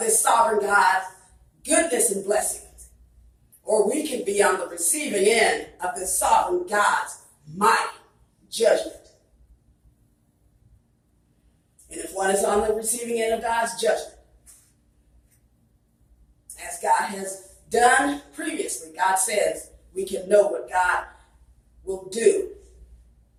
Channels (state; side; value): identical; both; correlation 1.00